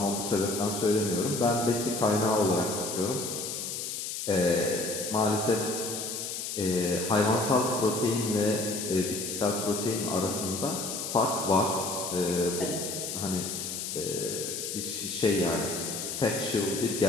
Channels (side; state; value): left; noise; hiss, 5 dB below the sound